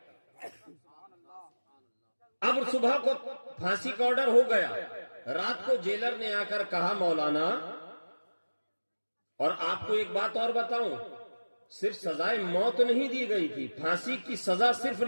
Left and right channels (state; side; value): inverted; both; correlation -1.00